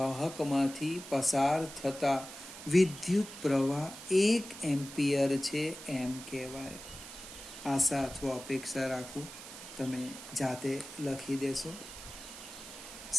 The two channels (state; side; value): noise; right; hiss, 13 dB below the sound